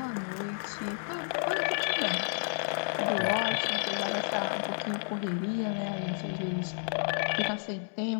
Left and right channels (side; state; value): right; silent; 57 dB below the other